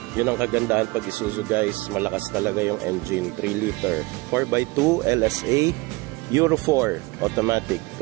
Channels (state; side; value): quieter; left; 23.9 dB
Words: Yun ang kagandahan pag Isuzu, guys. Malakas talaga yung engine. 3 liter 4x2 LSA Euro 4 automatic,